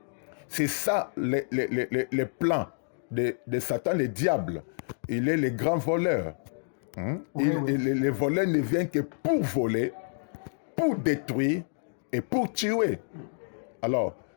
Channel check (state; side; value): silent; right; digital silence